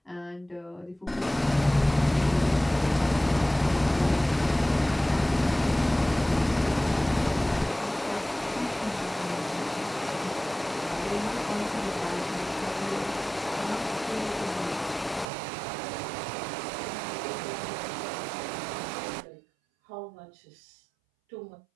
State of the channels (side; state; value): left; drops out; at 15.2 s